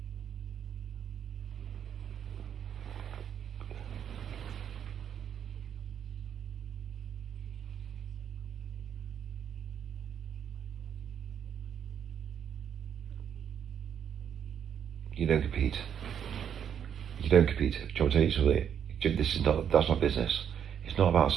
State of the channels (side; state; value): left; quieter; 8.5 dB